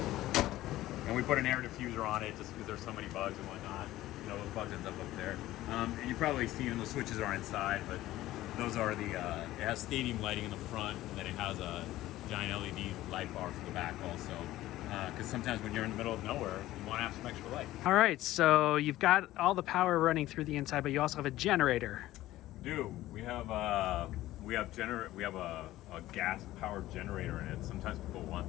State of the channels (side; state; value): right; quieter; 15.6 dB